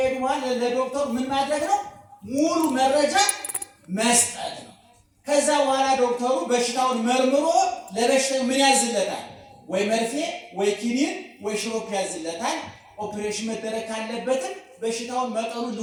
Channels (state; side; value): identical; both; correlation 1.00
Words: በኋላ ለዶክተሩ ምን ማድረግ ነው? ሙሉ መረጃ መስጠት ነው። ከዛ በኋላ ዶክተሩ በሽታውን መርምሮ ለበሽታው ምን ያዝለታል? ወይ መርፌ ወይ ኪኒን ወይ ሽሮፕ ያዝለታል። ኦፕሬሽን መደረግ ካለበትም በሽታውን መጠኑን